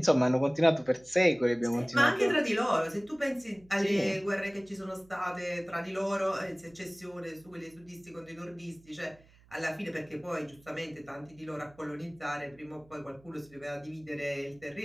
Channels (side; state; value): right; noise; hum, 27 dB below the sound